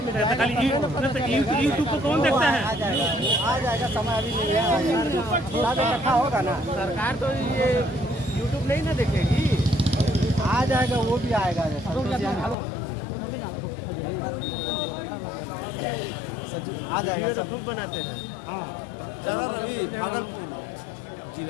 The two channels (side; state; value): right; drops out; at 12.6 s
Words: में खाली यूट्यूब को कौन देखता है? आ जाएगा, समय अभी नहीं है, रखा होगा ना। सरकार तो ये यूट्यूब नहीं ना देखेगी, आ जाएगा, वो भी आएगा। आ जाएगा, सब खूब बनाते हैं।